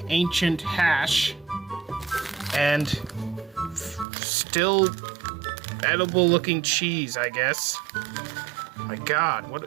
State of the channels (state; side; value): drops out; left; at 4.0 s